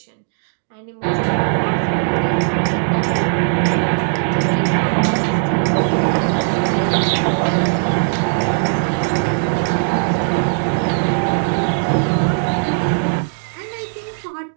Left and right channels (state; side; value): silent; left; digital silence